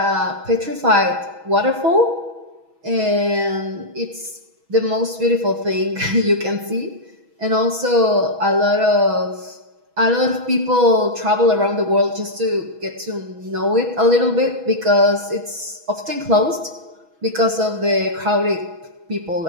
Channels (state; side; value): late; left; 6.2 ms